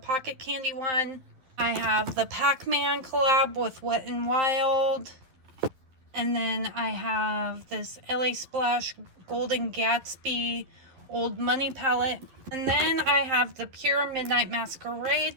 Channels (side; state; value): left; late; 11 ms